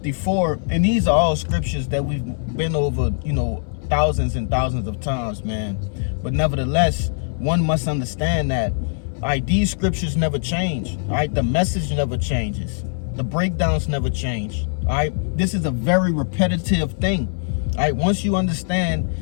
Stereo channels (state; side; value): silent; right; 60 dB below the other